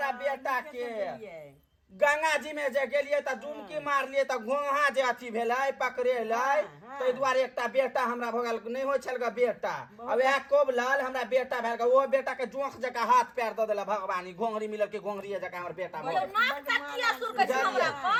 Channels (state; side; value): identical; both; correlation 1.00